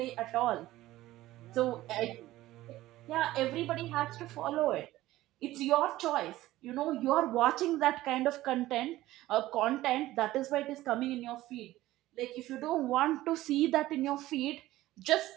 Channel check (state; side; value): quieter; left; 16.2 dB